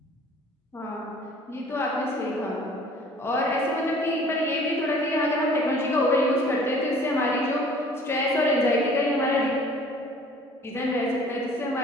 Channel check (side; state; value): both; normal; correlation 0.51